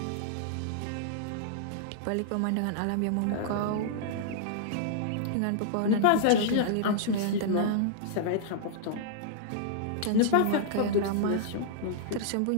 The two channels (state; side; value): different; both; correlation -0.01